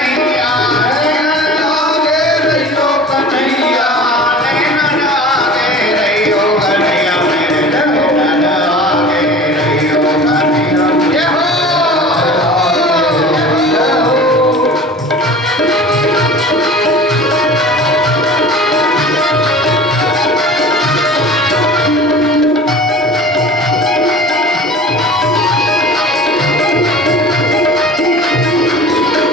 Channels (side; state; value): both; normal; correlation 0.40